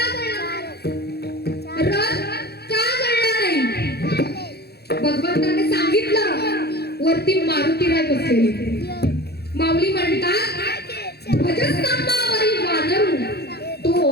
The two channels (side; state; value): right; late; 0.47 ms